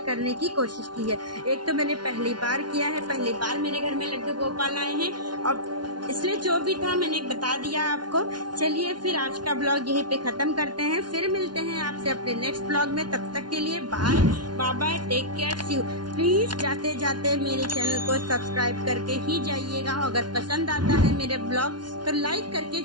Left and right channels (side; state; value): left; late; 0.70 ms